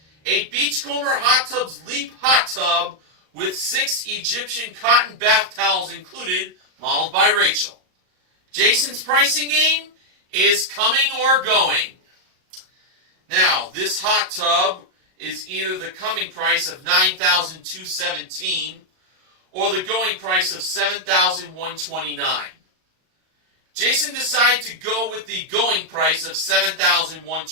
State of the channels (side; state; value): left; late; 38 ms